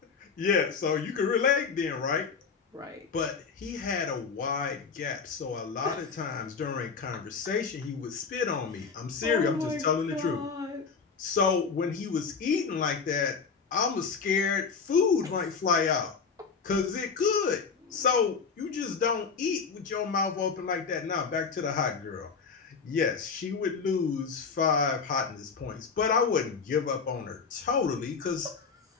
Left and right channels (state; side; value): quieter; right; 5.4 dB